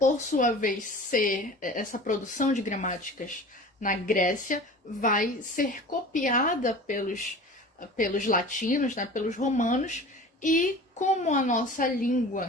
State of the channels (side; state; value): both; normal; correlation 0.39